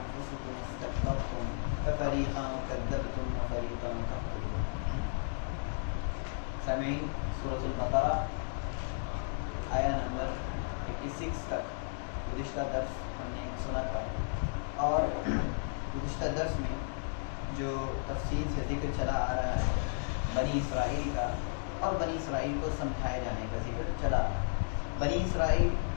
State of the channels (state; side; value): silent; right; digital silence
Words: استكبرتم ففريقا كذبتم وفريقا تقتلون. سامعین، سورۃ البقرہ آیا نمبر 86 تک گزشتہ درس ہم نے سنا تھا، اور گزشتہ درس میں جو تفصیل سے ذکر چلا آ رہا ہے بنی اسرائیل کا، اور بنی اسرائیل کو سمجھائے جانے کا ذکر چلا آ رہا ہے. بنی اسرائیل